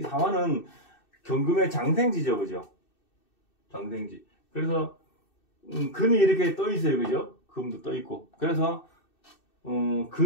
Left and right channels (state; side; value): late; right; 2.6 ms